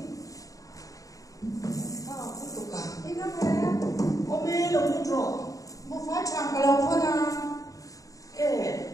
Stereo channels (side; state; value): right; late; 0.16 ms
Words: sao không tục cả Ini kan saya ôm mê lòng nó trọ mau fai tham kalau kau nak